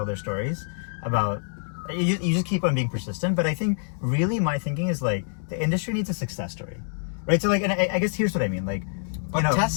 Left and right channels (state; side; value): silent; right; digital silence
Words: their stories about. You just keep on being persistent, but I think really my thinking is like the industry needs a success story, right? So like, and I guess here's what I mean, like. But you know,